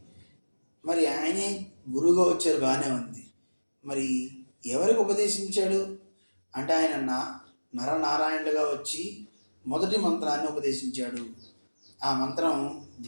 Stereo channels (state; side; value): inverted; both; correlation -1.00